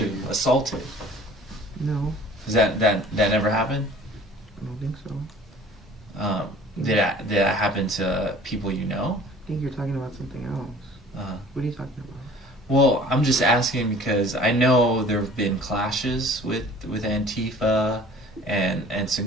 assaulted. No. Is that never happened? I don't think so. Did that happen to people you know? I think you're talking about something else. What are you talking about? Well, I'm just asking because I know there have been clashes with Antifa and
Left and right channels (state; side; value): normal; both; correlation 0.48